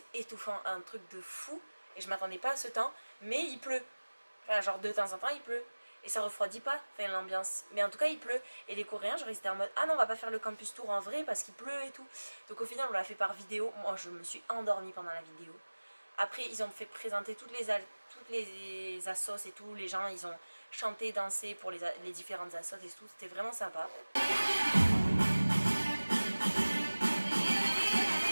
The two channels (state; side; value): inverted; both; correlation -1.00